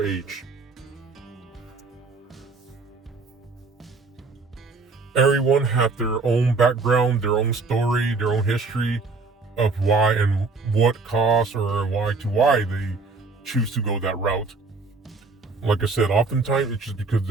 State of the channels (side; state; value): left; quieter; 4.0 dB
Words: age. Everyone have their own background, their own story, their own history of why and what caused or why they choose to go that route. Like I said, oftentimes it's just because